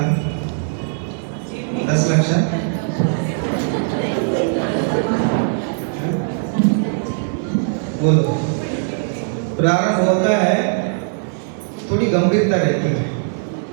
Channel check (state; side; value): silent; left; digital silence